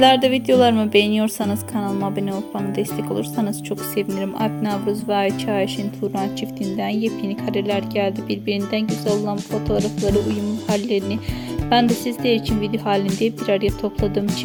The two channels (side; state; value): both; identical; correlation 1.00